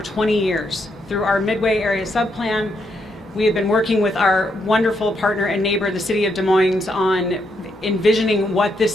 20 years. Through our Midway Area Subplan, we have been working with our wonderful partner and neighbor, the city of Des Moines, on envisioning what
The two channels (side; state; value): both; normal; correlation 0.78